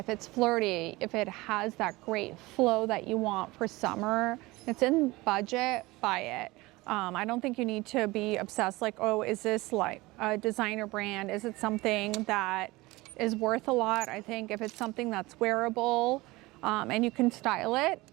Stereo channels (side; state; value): left; quieter; 21.1 dB